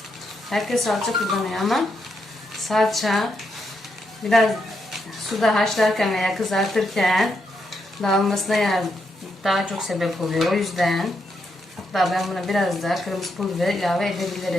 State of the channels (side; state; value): both; normal; correlation 0.81